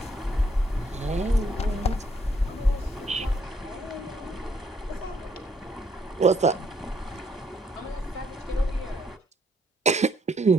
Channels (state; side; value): normal; both; correlation 0.71